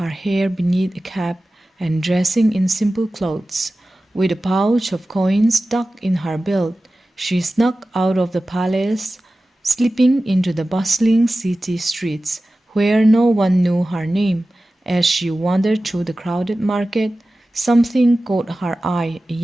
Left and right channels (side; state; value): both; normal; correlation 0.95